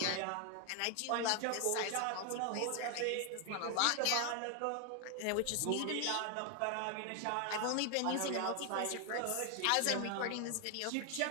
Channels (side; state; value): both; different; correlation 0.00